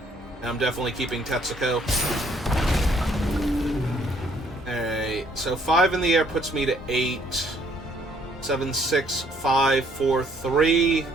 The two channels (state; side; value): normal; both; correlation 0.65